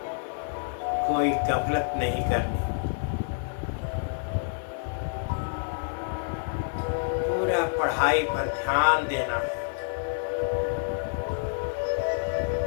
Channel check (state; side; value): silent; right; digital silence